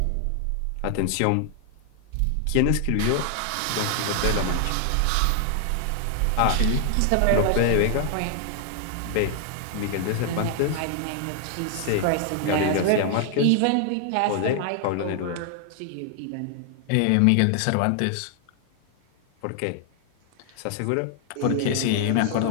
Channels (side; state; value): both; different; correlation 0.00